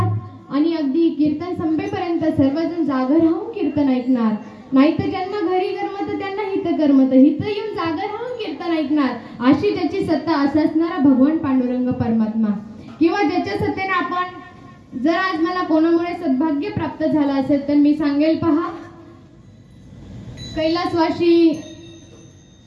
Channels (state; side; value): identical; both; correlation 1.00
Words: आणि अगदी कीर्तन संपेपर्यंत सर्वजण जागर राहून कीर्तन ऐकणार, नाहीतर ज्यांना घरी करमत त्यांना हित करमत, हित येऊन जागर राहून कीर्तन ऐकणार, अशी ज्याची सत्ता असा असणारा भगवान पांडुरंग परमात्मा, किंवा ज्याच्या सत्तेने आपण जर आज मला कोणामुळे सद्भाग्य प्राप्त झालं असेल तर मी सांगेल, पहा,